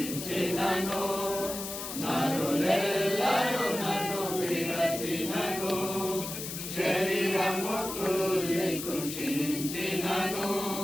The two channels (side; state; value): left; noise; hiss, 7 dB below the sound